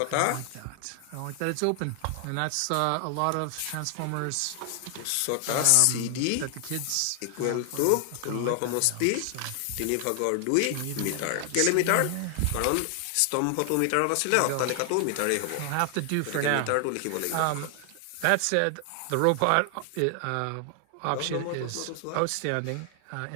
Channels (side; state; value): both; different; correlation 0.00